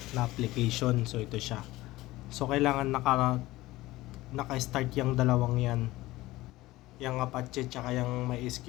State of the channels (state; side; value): quieter; right; 18.1 dB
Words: na application. So ito siya. So kailangan naka-start yung dalawang yan. Yung Apache tsaka yung